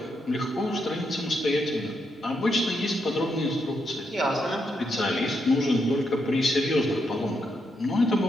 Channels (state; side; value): normal; both; correlation 0.80